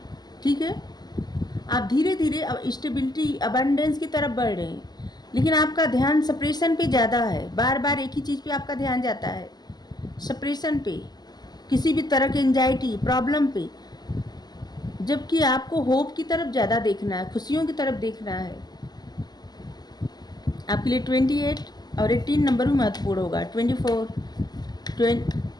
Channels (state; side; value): late; right; 0.20 ms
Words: ठीक है। आप धीरे धीरे स्टेबिलिटी, अबंडेंस की तरफ बढ़ रहे हैं, लेकिन आपका ध्यान सप्रेशन पे ज़्यादा है। बार बार एक ही चीज़ पे आपका ध्यान जाता है, सप्रेशन पे, किसी भी तरह की एंजाइटी, प्रॉब्लम पे, जबकि आपको होप की तरफ ज़्यादा देखना है, खुशियों की तरफ देखना है। आपके लिए 28 और 18 नंबर भी महत्वपूर्ण होगा। 24,